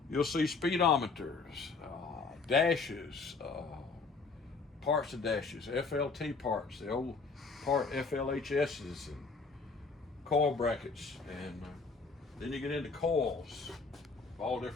You'll see speedometers, dashes, parts of dashes, FLT parts, the old part FLHSs, and coil brackets, and then you get into coils of all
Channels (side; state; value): right; quieter; 4.4 dB